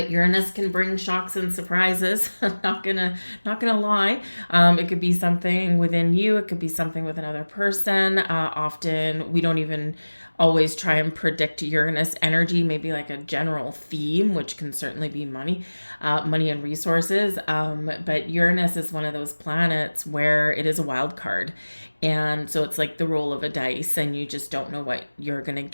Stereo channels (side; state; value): both; inverted; correlation -1.00